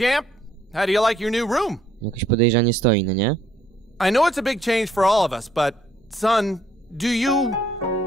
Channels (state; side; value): normal; both; correlation 0.66